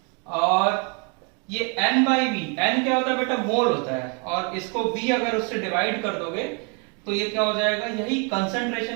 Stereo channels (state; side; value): quieter; left; 34.9 dB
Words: और ये N/V, N क्या होता है बेटा, मोल होता है, और इसको V अगर उससे डिवाइड कर दोगे तो ये क्या हो जाएगा, यही